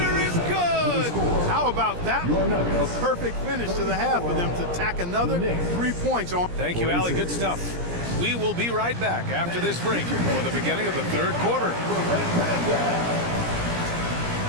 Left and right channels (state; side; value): late; left; 17 ms